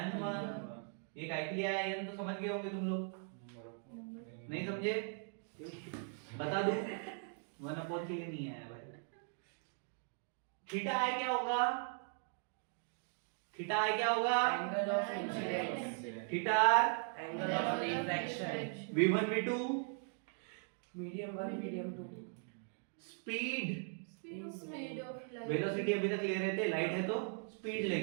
n1। ये काय के लिए आया n तो समझ गए होंगे तुम लोग, नहीं समझे? बता दूं, 1 अपॉन के लिए नहीं आया भाई। थीटा है क्या होगा? थीटा है क्या होगा? Angle of incidence. Theta Angle of refraction. v1 v2 Medium 1, medium 2. Speed Speed of light. Velocity अभी तक ले रहे थे, लाइट है तो स्पीड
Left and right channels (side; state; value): left; silent; 52 dB below the other